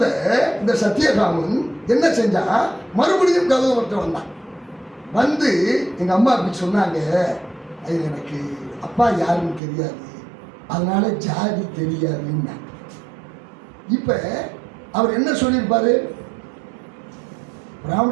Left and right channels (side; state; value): left; drops out; at 9.6 s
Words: இந்த சத்தியகாமன் என்ன செஞ்சா, மறுபடியும் கதவர்கிட்ட வந்தான். வந்து எங்க அம்மா அப்படி சொன்னாங்க, எனக்கு அப்பா யாருன்னு தெரியாது, அதனால ஜாதி தெரியாதுன்னா. இப்ப அவர் என்ன சொல்லியிருப்பாரு?